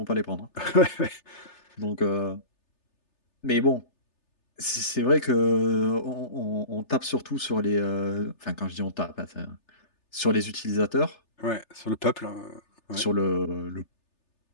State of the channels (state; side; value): late; right; 3.3 ms